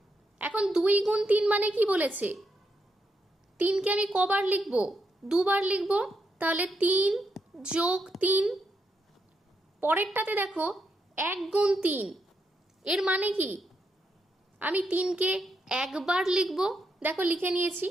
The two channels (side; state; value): both; normal; correlation 0.81